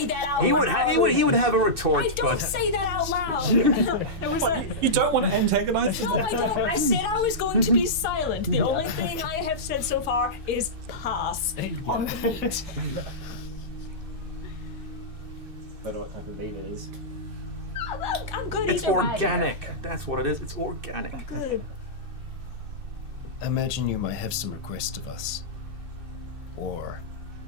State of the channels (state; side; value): late; left; 2.6 ms